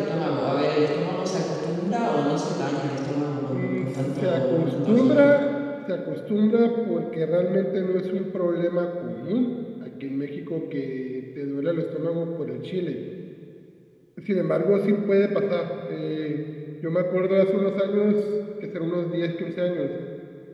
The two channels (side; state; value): both; identical; correlation 1.00